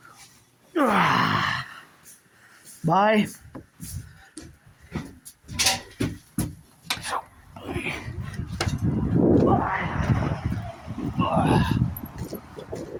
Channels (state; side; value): identical; both; correlation 1.00